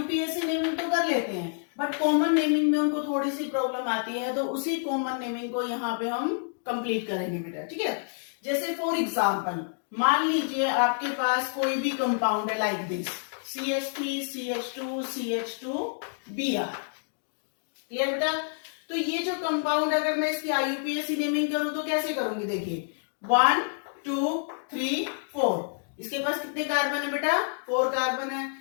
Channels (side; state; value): right; silent; digital silence